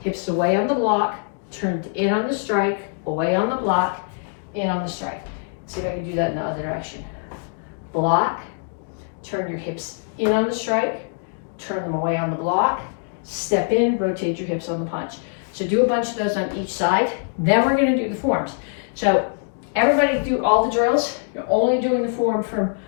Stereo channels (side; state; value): right; silent; 59 dB below the other